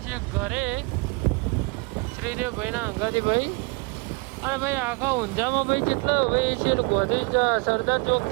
છીએ ઘરે શ્રીદેવ ભાઈના અંગાથી ભાઈ. અને ભાઈ આખા ઊંઝામાં ભાઈ જેટલા ભાઈ છે ગોધી સરદાર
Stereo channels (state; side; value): quieter; left; 28.7 dB